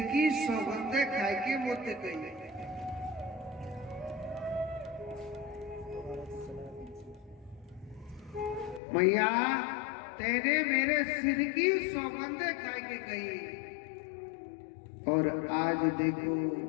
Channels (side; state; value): right; drops out; at 8.8 s